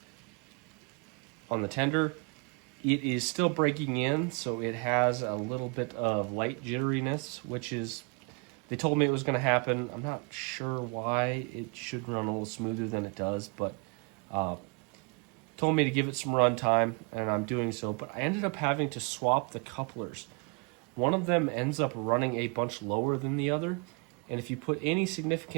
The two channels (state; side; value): quieter; left; 34.1 dB